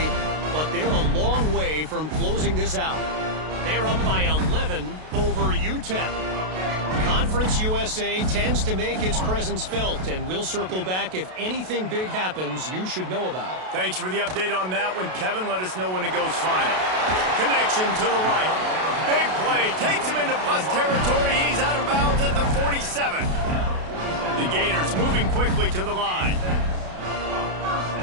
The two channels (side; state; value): left; late; 32 ms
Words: but they're a long way from closing this out. They're up by 11 over UTEP. Conference USA tends to make its presence felt, and we'll circle back if anything big happens you should know about. Thanks for the update on that one, Kevin. Let us know when it goes final. Connection to the right. Big play. Takes him into plus territory. He's out of bounds at the 47. The Gators moving quickly to the line.